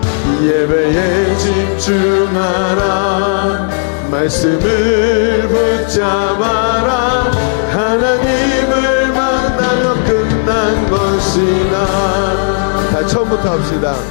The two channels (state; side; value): silent; right; digital silence